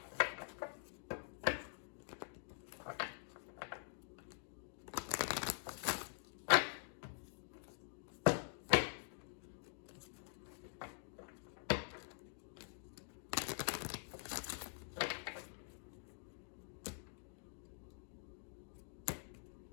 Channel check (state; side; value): silent; right; digital silence